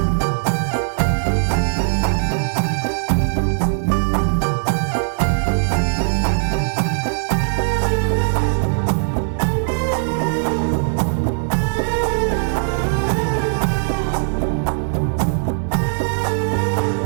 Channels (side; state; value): left; silent; digital silence